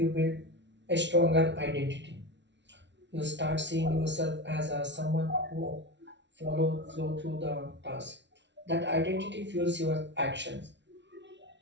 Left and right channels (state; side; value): late; left; 0.51 ms